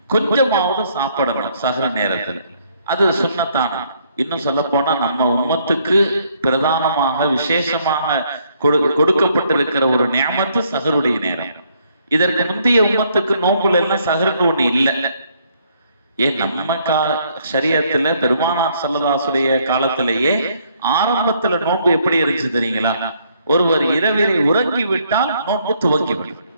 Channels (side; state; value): both; inverted; correlation -0.68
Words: கொஞ்சமாவது சாப்பிடணும் சஹர் நேரத்தில். அது சுன்னத்தான. இன்னும் சொல்ல போனா நம்ம உம்மத்துக்கு பிரதானமாக விசேஷமாக கொடுக்கப்பட்டிருக்கிற ஒரு நியமத்து சஹருடைய நேரம். இதற்கு முந்தைய உம்மத்துக்கு நோம்புல எல்லாம் சஹர்னு ஒண்ணு இல்லை. ஏன் நம்ம ஷரியத்துல பெருமானார் ஸல்லல்லாஹு காலத்திலேயே ஆரம்பத்துல நோன்பு எப்படி இருந்துச்சு தெரியுங்களா? ஒருவர் இரவிலே உறங்கி விட்டால் நோன்பு துவங்கிவிடும்,